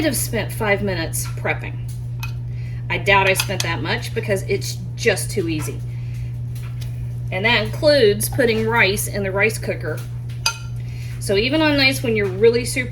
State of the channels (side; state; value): both; identical; correlation 1.00